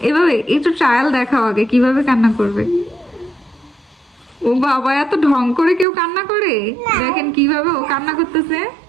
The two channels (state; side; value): drops out; left; at 5.9 s